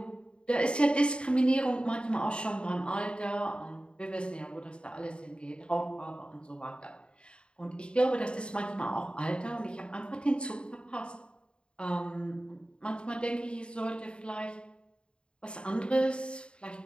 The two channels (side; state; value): right; late; 0.053 ms